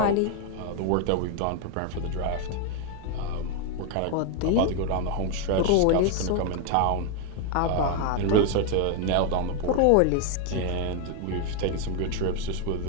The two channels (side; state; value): both; different; correlation 0.01